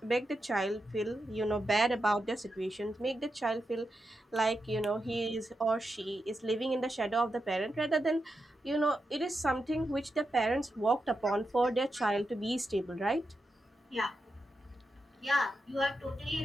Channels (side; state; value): both; normal; correlation 0.87